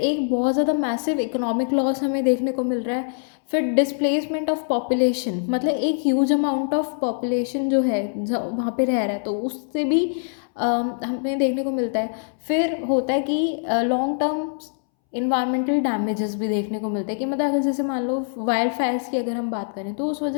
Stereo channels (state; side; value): silent; right; 63 dB below the other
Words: बहुत ज़्यादा मैसिव इकोनॉमिक लॉस हमें देखने को मिल रहा है। फिर डिस्प्लेसमेंट ऑफ पॉपुलेशन, मतलब एक ह्यूज अमाउंट ऑफ पॉपुलेशन जो है वहाँ पे रह रहा है, तो उससे भी हमें देखने को मिलता है। फिर होता है कि लॉन्ग टर्म इन्वायरमेंटल डैमेजेस भी देखने को मिलते हैं कि मतलब अगर जैसे मान लो वाइल्ड फायर्स की अगर हम बात करें तो उस